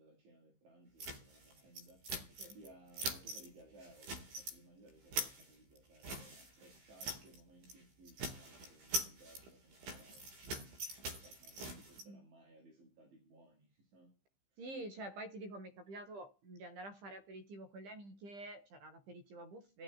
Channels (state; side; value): late; left; 15 ms